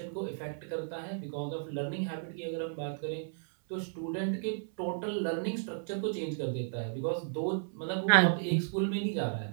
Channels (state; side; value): silent; left; 55 dB below the other